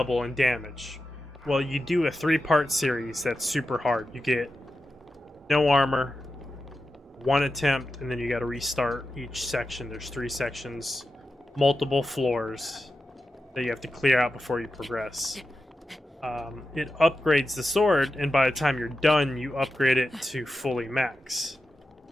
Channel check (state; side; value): normal; both; correlation 0.90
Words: in damage. Well, you do a 3-part series that's super hard. You get no armor, 1 attempt, and then you got to restart each section. There's 3 sections, multiple floors that you have to clear out before you progress. It upgrades the sword, and by the time you're done, you upgrade it to fully max.